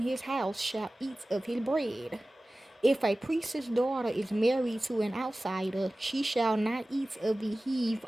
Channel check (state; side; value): normal; both; correlation 0.97